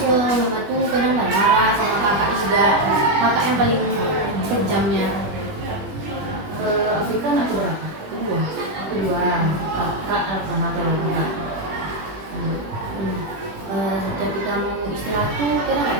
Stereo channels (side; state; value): left; late; 20 ms